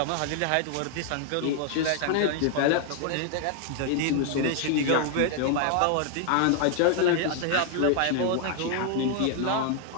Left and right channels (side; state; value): both; different; correlation 0.00